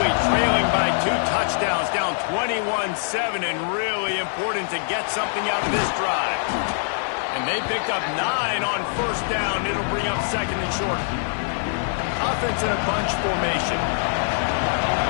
trailing by 2 touchdowns, down 21-7, and really important to get something out of this drive. And they picked up 9 on first down. It'll bring up second and short. Offense in a bunch formation.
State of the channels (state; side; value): silent; right; digital silence